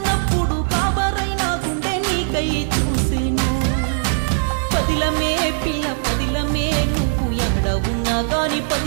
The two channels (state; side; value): silent; left; 57 dB below the other